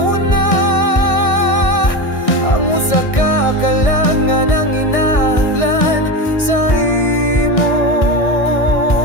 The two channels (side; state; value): right; late; 1.6 ms